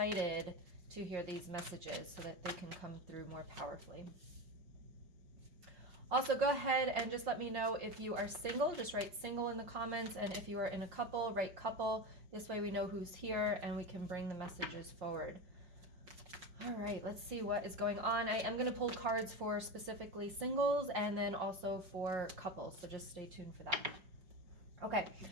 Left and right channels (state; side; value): late; left; 5.6 ms